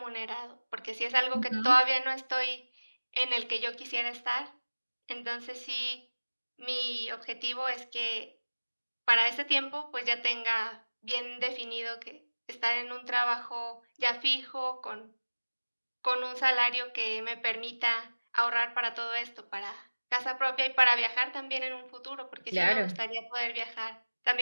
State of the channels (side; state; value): both; inverted; correlation -1.00